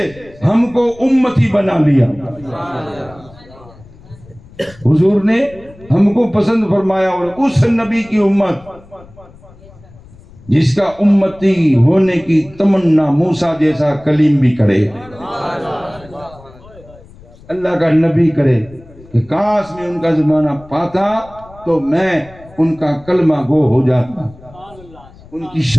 ہم کو امتی بنا لیا. حضور نے ہم کو پسند فرمایا اور اس نبی کی امت جس کا امتی ہونے کی تمنا موسیٰ جیسا کلیم بھی کرے، اللہ کا نبی کرے کہ کاش میں ان کا زمانہ پاتا تو میں ان کا کلمہ گو ہو جاتا، ان کی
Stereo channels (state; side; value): noise; left; rumble, 23 dB below the sound